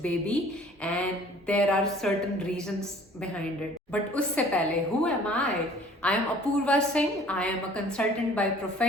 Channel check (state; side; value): normal; both; correlation 0.51